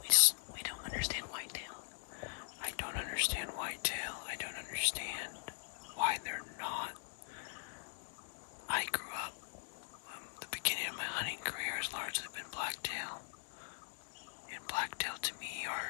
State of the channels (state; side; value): silent; right; digital silence